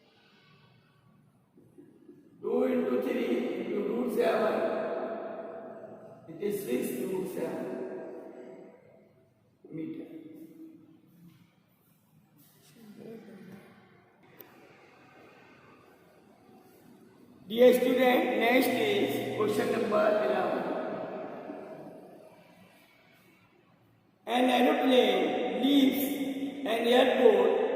2 into 3 into root 7, it is 6 root 7 meter. Dear student, next is question number 11. An aeroplane leaves an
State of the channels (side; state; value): both; identical; correlation 1.00